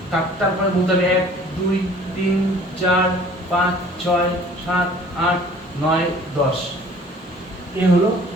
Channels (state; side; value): normal; both; correlation 0.51